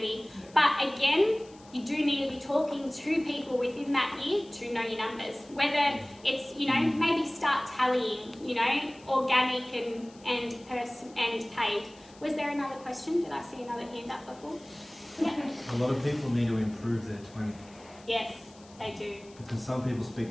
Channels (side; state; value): left; noise; hiss, 25 dB below the sound